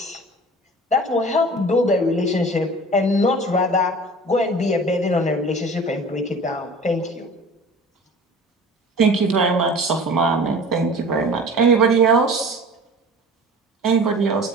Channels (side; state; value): both; normal; correlation 0.41